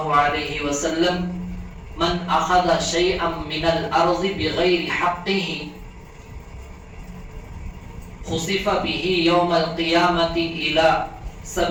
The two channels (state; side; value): identical; both; correlation 1.00